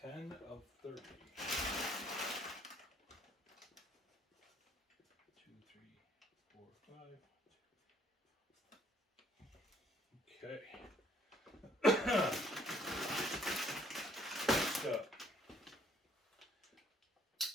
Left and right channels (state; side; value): normal; both; correlation 0.63